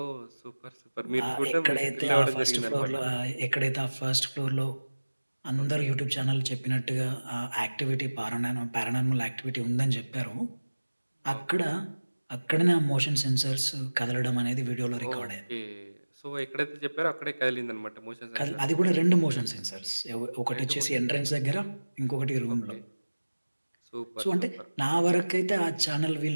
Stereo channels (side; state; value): both; inverted; correlation -1.00